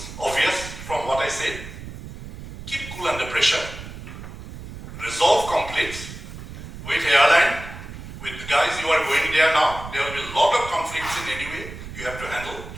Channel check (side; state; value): right; noise; rumble, 12 dB below the sound